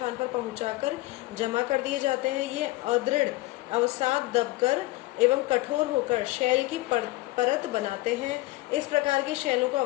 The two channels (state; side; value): quieter; right; 19.4 dB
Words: पर पहुंचाकर जमा कर दिए जाते हैं। ये अदृढ़ अवसाद दबकर एवं कठोर होकर शैल की परत बनाते हैं। इस प्रकार की शैलों को